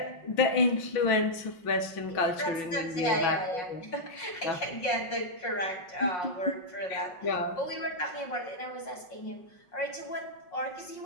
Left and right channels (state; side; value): late; right; 5.6 ms